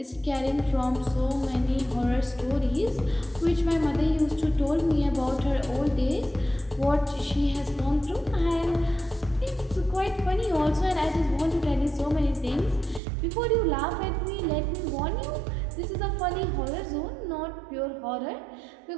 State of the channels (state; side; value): drops out; left; at 13.0 s